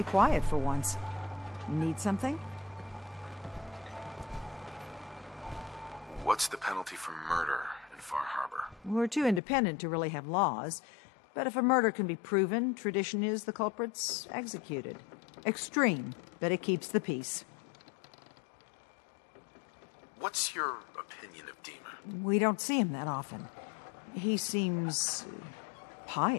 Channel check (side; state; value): right; drops out; at 9.4 s